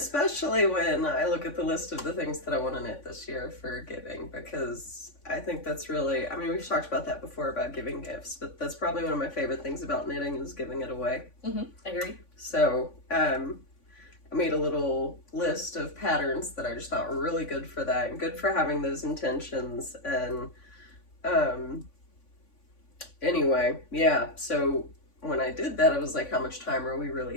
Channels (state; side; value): late; right; 3.5 ms